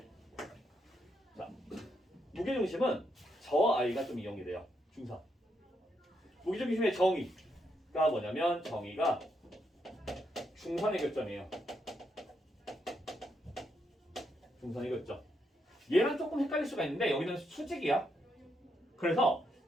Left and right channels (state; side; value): normal; both; correlation 0.79